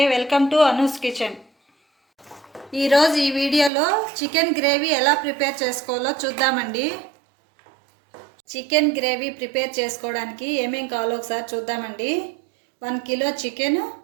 Welcome to Anu's kitchen. ఈరోజు ఈ వీడియోలో చికెన్ గ్రేవీ ఎలా ప్రిపేర్ చేసుకోవాలో చూద్దామండి. చికెన్ గ్రేవీ ప్రిపేర్ చేసుకోవడానికి ఏమేం కావాలో ఒకసారి చూద్దామండి. 1 కిలో చికెన్,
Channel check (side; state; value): left; drops out; at 3.7 s